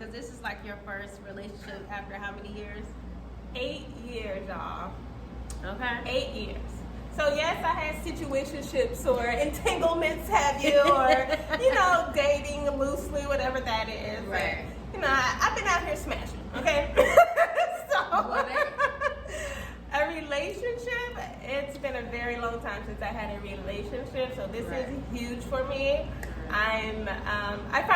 this is like your first relationship after how many years? 8 years, y'all. Okay. 8 years. So yes, I had situationships or entanglements, have you, or dating loosely, whatever that is. Right. But, I've been out here smashing. Okay. So a relationship. It's been a very long time since I had a relationship, so this is huge for me. I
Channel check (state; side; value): identical; both; correlation 1.00